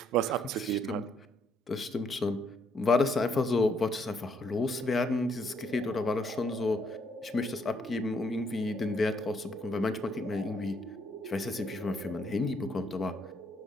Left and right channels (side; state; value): both; normal; correlation 0.71